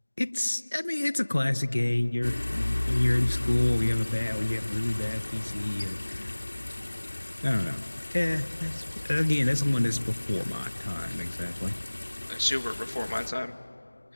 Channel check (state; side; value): inverted; both; correlation -1.00